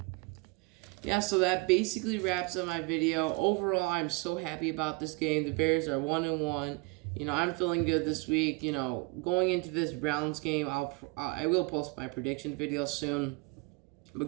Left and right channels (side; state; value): left; quieter; 27.9 dB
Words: Yeah, so that basically wraps up my video. Overall, I'm so happy about this game. The Bears are 1-1. I'm feeling good this week. Going into this Browns game, I will post my prediction video soon.